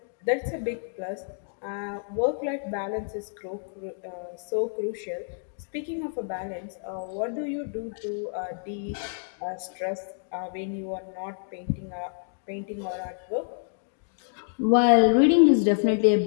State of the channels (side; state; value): right; silent; digital silence